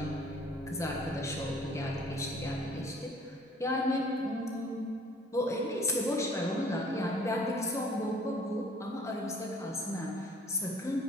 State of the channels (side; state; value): both; normal; correlation 0.54